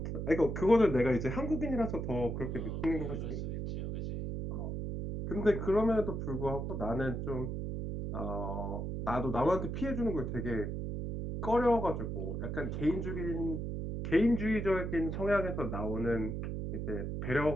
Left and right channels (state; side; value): noise; right; hum, 3 dB below the sound